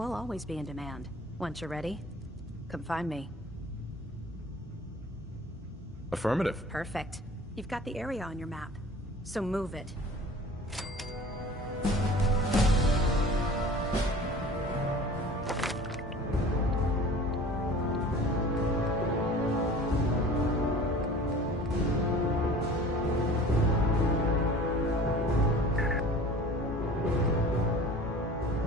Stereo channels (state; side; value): normal; both; correlation 0.43